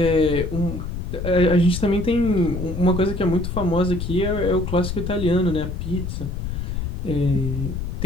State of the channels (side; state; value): left; noise; rumble, 5 dB below the sound